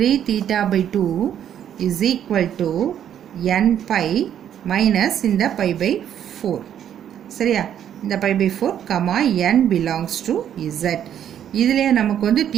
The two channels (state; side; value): quieter; left; 9.8 dB